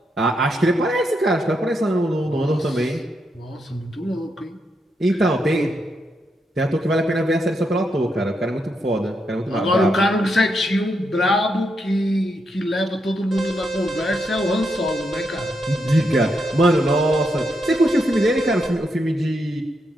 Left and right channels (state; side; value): normal; both; correlation 0.81